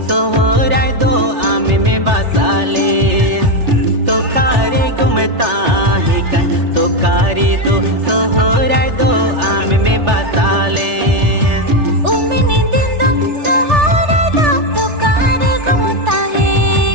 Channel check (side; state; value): left; late; 3.4 ms